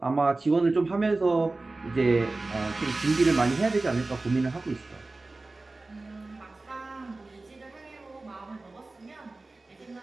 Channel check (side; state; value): left; quieter; 3.2 dB